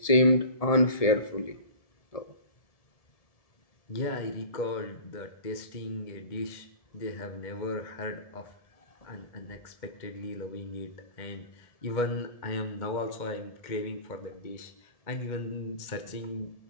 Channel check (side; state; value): right; late; 2.1 ms